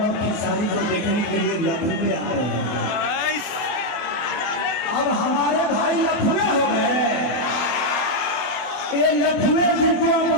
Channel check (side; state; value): right; late; 24 ms